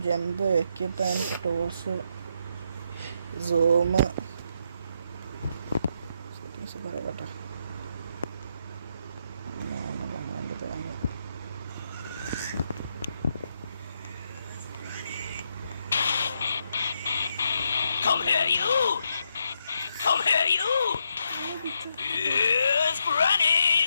jump, equipment, tools, zoom, settings പറയട്ടെ. Come here, you! Come here, you! Yes, Granny!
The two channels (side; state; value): both; inverted; correlation -0.80